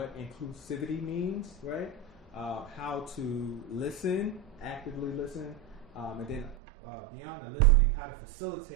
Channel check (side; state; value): left; drops out; at 6.6 s